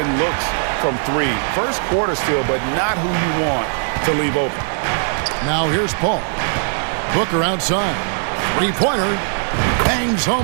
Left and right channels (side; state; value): left; silent; digital silence